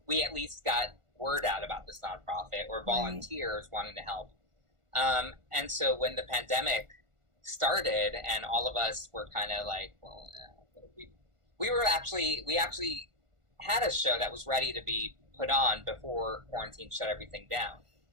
we at least got word out about this nonprofit, or volunteers wanting to help. And so when the pandemic started, and all of us were kind of like, well, we actually had a show that was ready to be put on before quarantine shut everything down.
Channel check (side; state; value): left; late; 1.4 ms